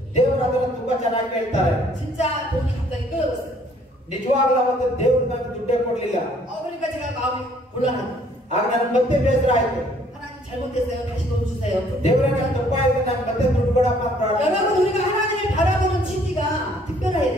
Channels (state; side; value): normal; both; correlation 0.61